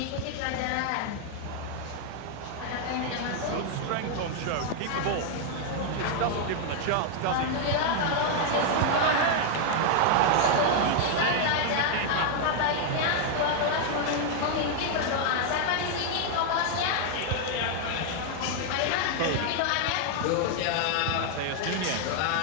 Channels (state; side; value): different; both; correlation 0.00